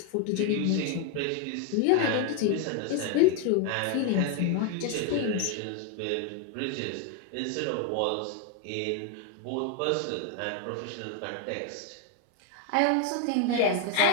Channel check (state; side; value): different; both; correlation 0.01